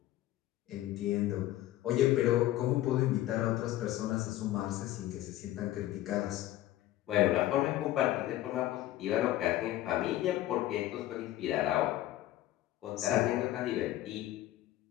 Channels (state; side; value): quieter; right; 14.8 dB